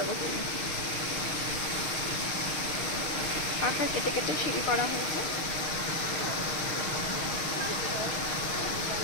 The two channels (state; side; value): late; right; 6.4 ms